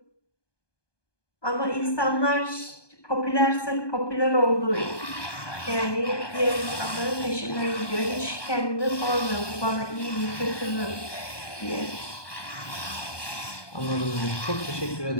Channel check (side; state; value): right; late; 1.2 ms